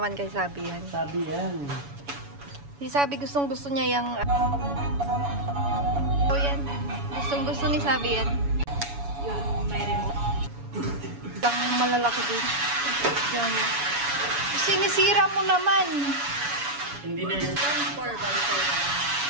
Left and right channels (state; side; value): late; left; 7.1 ms